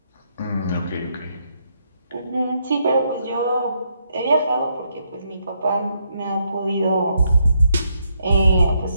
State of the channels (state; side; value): inverted; both; correlation -0.76